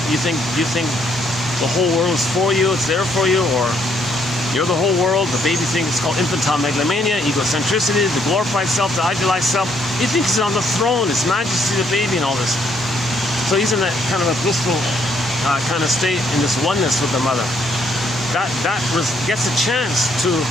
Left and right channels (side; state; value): both; normal; correlation 0.70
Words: You think the whole world is for you, it's there for you, or you're the whole world. The baby thinks it's called infantile megalomania, egocentricity, the glorified self, the idealized self. He thinks he's on the throne, his majesty, the baby, and all this. So he's in that kind of a blissful kind of state in this oneness with the mother. That gets a chance to